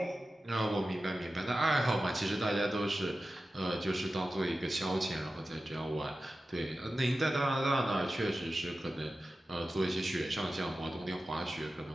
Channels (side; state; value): both; normal; correlation 0.94